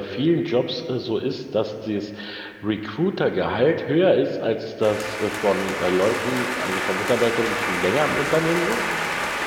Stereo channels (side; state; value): both; identical; correlation 1.00